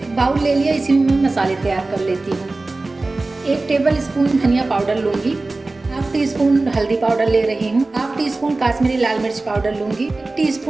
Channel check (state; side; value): quieter; left; 3.2 dB